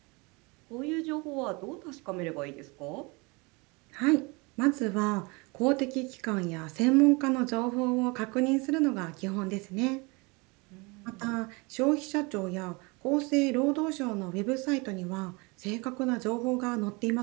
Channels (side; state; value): left; quieter; 27.6 dB